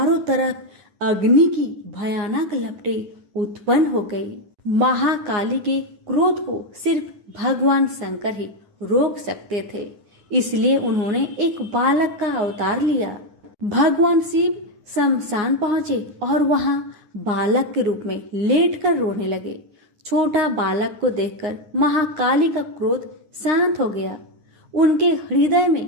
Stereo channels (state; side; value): late; left; 9.7 ms